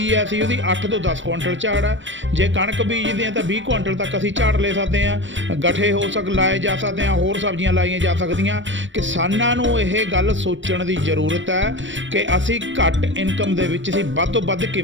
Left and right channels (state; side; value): late; left; 0.55 ms